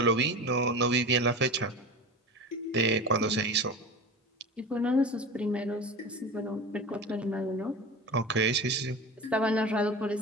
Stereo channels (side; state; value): both; normal; correlation 0.30